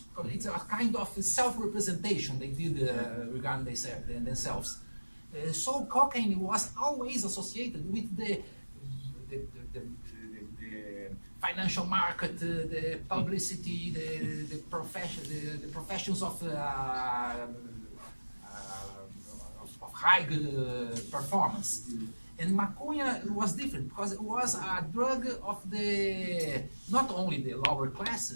It's a kind of self-representation they did regarding themselves. So cocaine was always associated with the financial market, the publicity, the professions of high performance. And maconha was different because it was a drug of not only the lower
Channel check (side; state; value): both; inverted; correlation -1.00